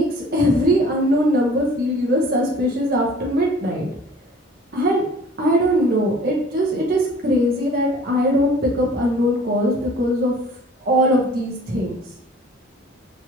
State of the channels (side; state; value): both; normal; correlation 0.49